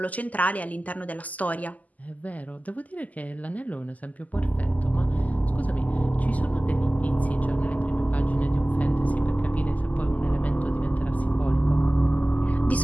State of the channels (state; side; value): late; right; 0.077 ms